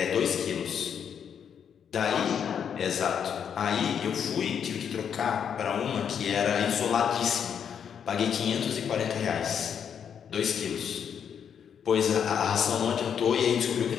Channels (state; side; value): quieter; right; 7.9 dB